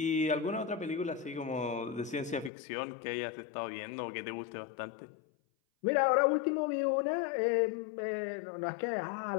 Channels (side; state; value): right; drops out; at 2.5 s